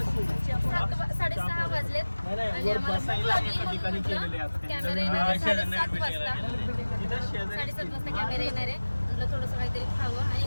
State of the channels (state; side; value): inverted; both; correlation -1.00